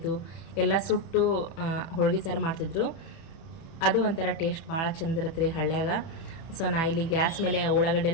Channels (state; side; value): late; right; 30 ms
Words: ಎಲ್ಲ ಸುಟ್ಟು ಹೋಳ್ಗೆ ಸಾರು ಮಾಡ್ತಿದ್ರು. ಅದು ಒಂಥರ ಟೇಸ್ಟ್ ಭಾಳ ಚಂದ ಇರುತ್ತೆ ರೀ ಹಳ್ಳ್ಯಾಗ. ಸೊ ನಾ ಇಲ್ಲಿ ಗ್ಯಾಸ್ ಮೇಲೆ ಉಳ್ಳಾಗಡ್ಡೆ